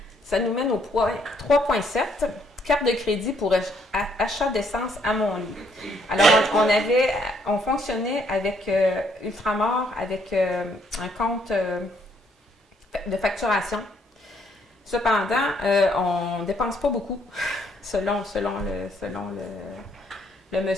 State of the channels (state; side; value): normal; both; correlation 0.69